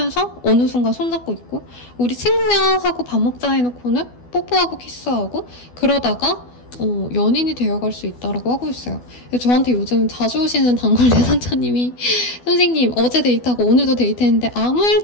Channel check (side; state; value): right; late; 12 ms